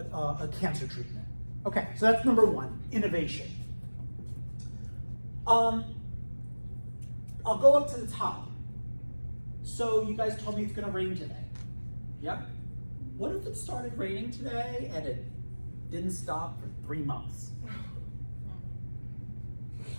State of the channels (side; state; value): both; inverted; correlation -1.00